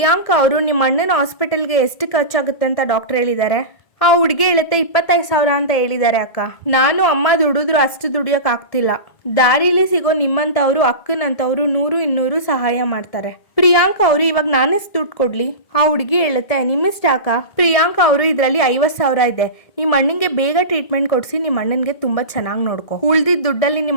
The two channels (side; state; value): right; late; 1.7 ms